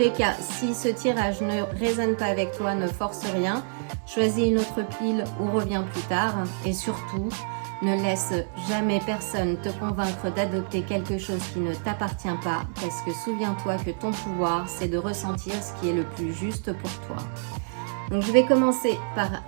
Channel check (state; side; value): silent; left; digital silence